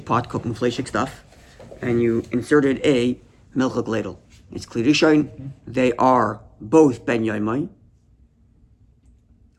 pot cooking fleshik stuff, and you inserted a milchuk ladle. It's klirishon. They are both ben yaimai,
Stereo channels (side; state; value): both; identical; correlation 1.00